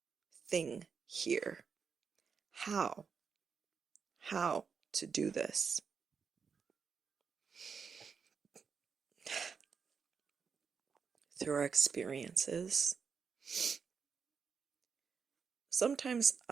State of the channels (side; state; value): left; quieter; 6.0 dB